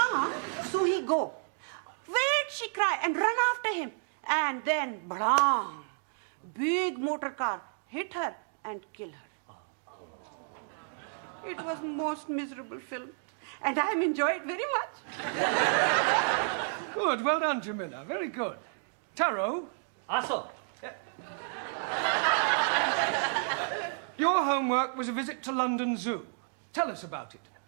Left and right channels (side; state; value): left; silent; 57 dB below the other